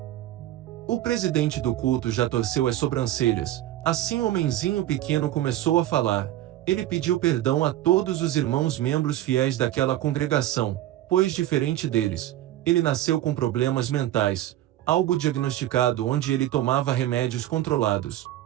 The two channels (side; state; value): left; quieter; 13.7 dB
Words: O presidente do culto já torceu as sobrancelhas. Assim o homenzinho pequeno começou a falar. Ele pediu perdão a todos os irmãos membros fiéis daquela congregação, pois diferente deles, ele nasceu com problemas mentais, algo diagnosticado onde ele tomava remédios controlados.